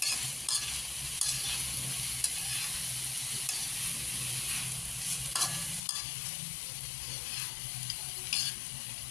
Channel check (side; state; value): right; drops out; at 5.8 s